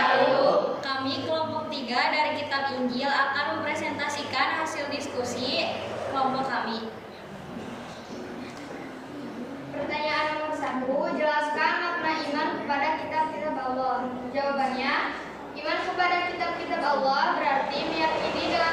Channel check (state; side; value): identical; both; correlation 1.00